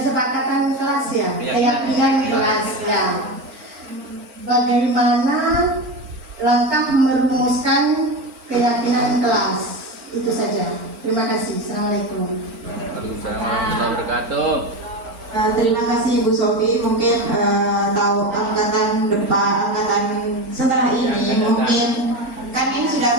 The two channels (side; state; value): left; late; 4.4 ms